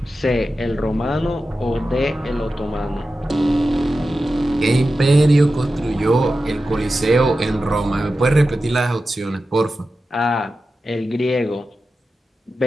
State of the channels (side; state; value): both; normal; correlation 0.92